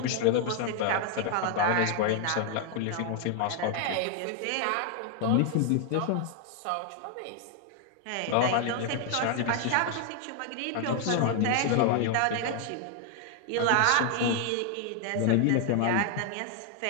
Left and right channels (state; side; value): different; both; correlation 0.00